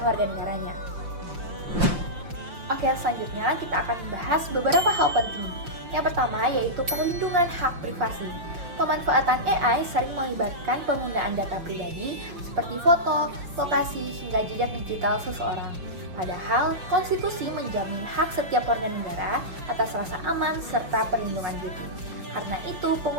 warga negaranya. Oke, selanjutnya kita akan membahas beberapa hal penting. Yang pertama yaitu perlindungan hak privasi. Pemanfaatan AI sering melibatkan penggunaan data pribadi seperti foto, lokasi, hingga jejak digital seseorang. Padahal, konstitusi menjamin hak setiap warga negara atas rasa aman serta perlindungan diri. Karena itu,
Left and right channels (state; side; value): late; left; 5.7 ms